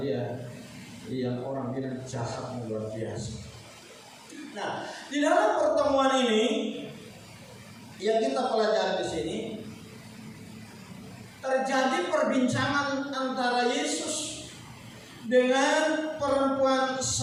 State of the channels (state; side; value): identical; both; correlation 1.00